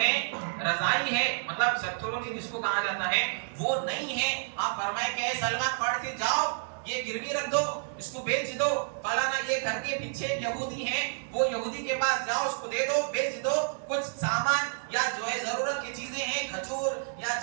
رضائی ہے، مطلب سترونی جس کو کہا جاتا ہے وہ نہیں ہے، آپ فرمائے کہ اے سلمان پڑھ سے جاؤ یہ گروی رکھ دو، اس کو بیچ دو، فلانا یہ گھر کے پیچھے یہودی ہیں وہ یہودی کے پاس جاؤ اس کو دے دو بیچ دو، کچھ سامان یا جو ہے ضرورت کی چیزیں ہیں کھجور یا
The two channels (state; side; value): silent; left; digital silence